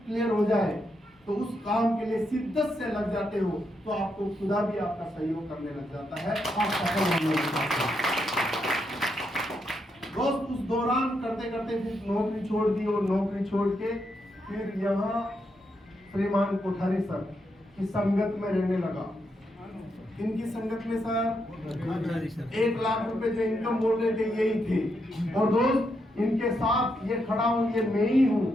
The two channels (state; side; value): normal; both; correlation 0.81